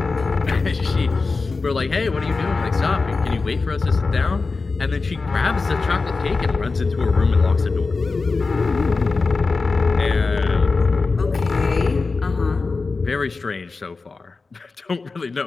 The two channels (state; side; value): quieter; right; 4.1 dB